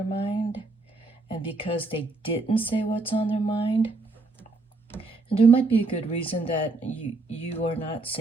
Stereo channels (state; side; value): quieter; left; 3.5 dB